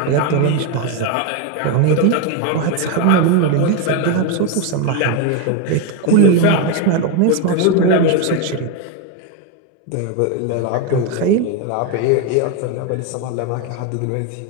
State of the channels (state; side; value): different; both; correlation 0.02